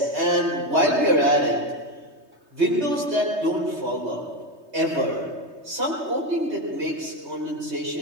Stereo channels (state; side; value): late; left; 3.2 ms